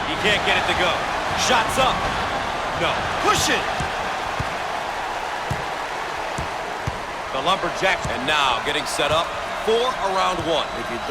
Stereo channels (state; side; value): identical; both; correlation 1.00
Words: He can't get it to go. Shots up. No. Push it. The Lumberjacks, and now getting set up for a round one. If you